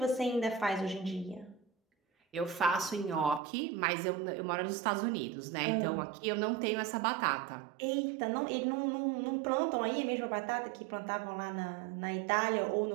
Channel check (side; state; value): left; drops out; at 3.4 s